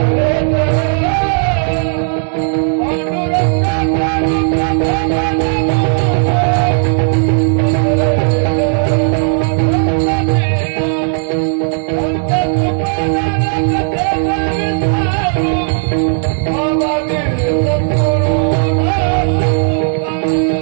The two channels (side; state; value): left; silent; 71 dB below the other